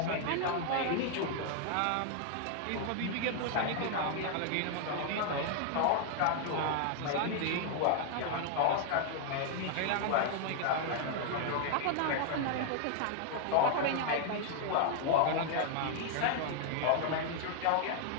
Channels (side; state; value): both; different; correlation 0.00